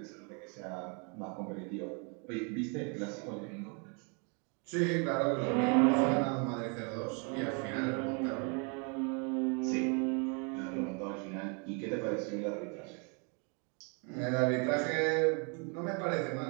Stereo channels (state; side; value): quieter; left; 35.8 dB